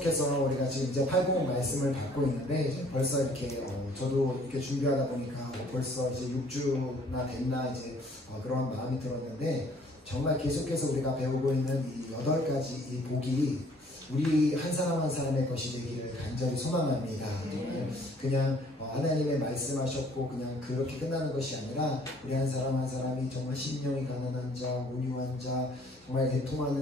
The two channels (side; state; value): both; normal; correlation 0.59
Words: 우리가 지금 이제 팔복 말씀을 받고 있는데 이제 벌써 이렇게 저도 이렇게 준비하다 보니까 벌써 이제 6주나 됐나 이제 그런 마음이 들었는데 정말 계속해서 우리가 배우고 있는 이 8가지 이 복이 우리 한 사람 한 사람의 것이 되기를 간절히 소망합니다. 정말 그냥 하나님의 말씀하셨고 그냥 그렇게 끝나는 것이 아니라 우리 한 사람 한 사람이 정말 심령이 가난한 자, 온유한 자, 정말